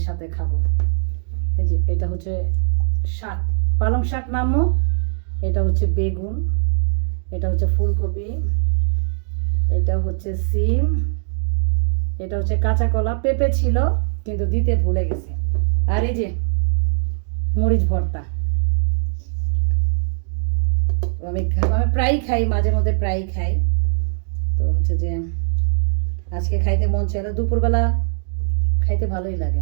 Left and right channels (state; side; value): silent; left; digital silence